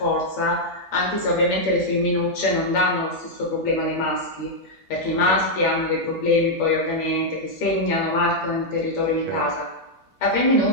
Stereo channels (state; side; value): normal; both; correlation -0.03